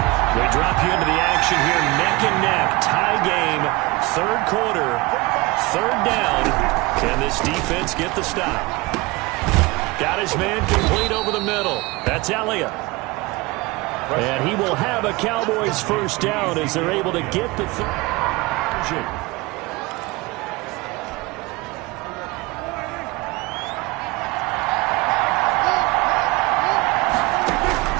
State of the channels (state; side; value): quieter; left; 23.6 dB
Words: We drop you into the action here, neck and neck, tie game, 3rd quarter, 3rd down. Can this defense get the stop? Got his man complete over the middle. That's Elliott. And he will have a Cowboys 1st down as they're able to get the